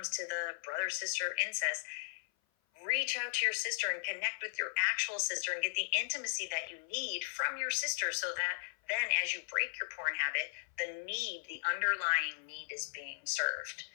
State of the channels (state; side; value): silent; right; 53 dB below the other